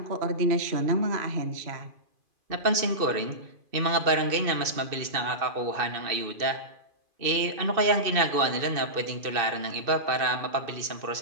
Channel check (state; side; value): late; left; 2.7 ms